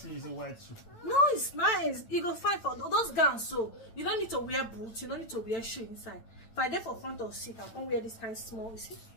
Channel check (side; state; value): right; late; 9.0 ms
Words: the white shoe? No, it's nice. You go find for those gowns, so you don't need to wear boots, you don't need to wear shoe inside. If I did for front or seat, I can't wear this kind of small. You see?